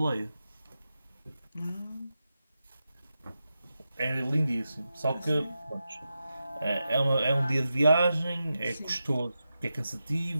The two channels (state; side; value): inverted; both; correlation -0.90